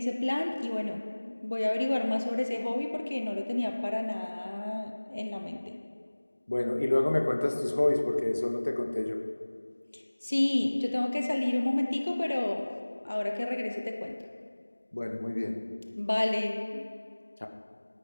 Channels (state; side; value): inverted; both; correlation -1.00